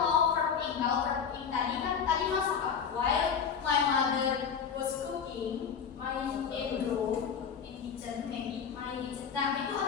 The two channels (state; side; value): quieter; right; 6.9 dB